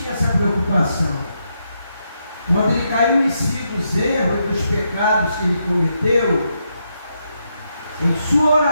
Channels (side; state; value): both; inverted; correlation -0.81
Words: essa preocupação. Quando ele caiu em si dos erros e dos pecados que ele cometeu, em sua